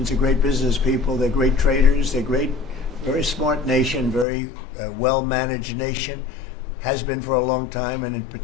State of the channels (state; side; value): drops out; right; at 4.2 s